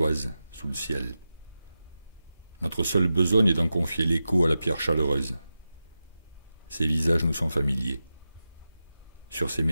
sous le ciel. Notre seule besogne est d'en confier l'écho à la pierre chaleureuse. Ces visages nous sont familiers. Sur ces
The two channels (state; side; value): inverted; both; correlation -0.92